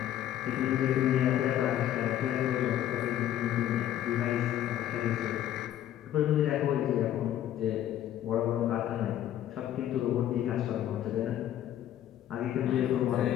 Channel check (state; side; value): quieter; right; 11.7 dB